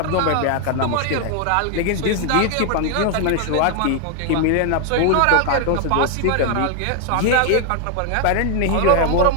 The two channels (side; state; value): both; different; correlation 0.00